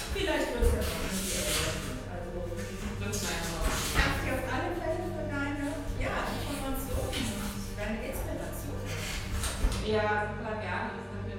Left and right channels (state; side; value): identical; both; correlation 1.00